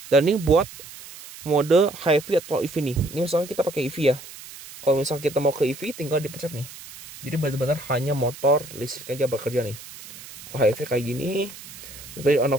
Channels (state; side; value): noise; right; hiss, 16 dB below the sound